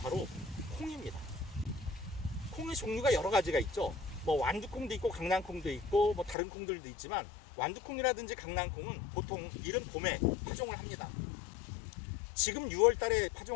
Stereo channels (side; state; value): right; drops out; at 6.4 s